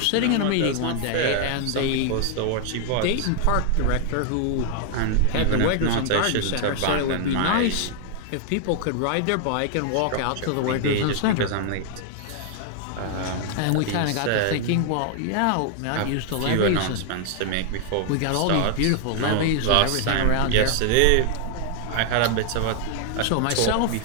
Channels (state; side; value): different; both; correlation 0.00